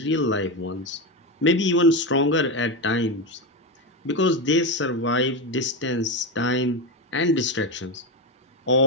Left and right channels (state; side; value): normal; both; correlation 0.14